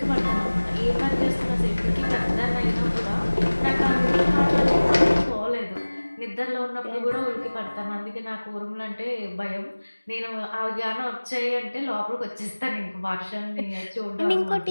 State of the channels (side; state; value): both; inverted; correlation -1.00